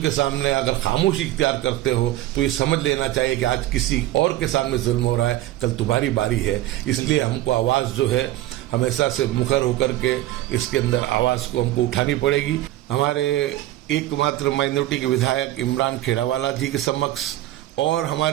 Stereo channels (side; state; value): left; quieter; 15.0 dB